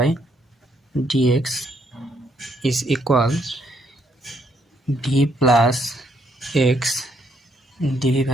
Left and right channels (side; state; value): both; normal; correlation 0.72